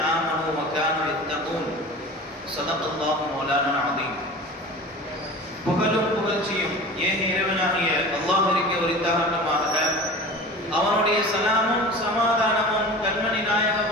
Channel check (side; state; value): both; normal; correlation 0.36